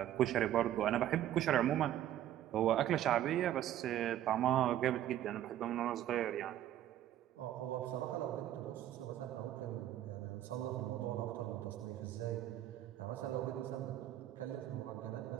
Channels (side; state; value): left; quieter; 12.2 dB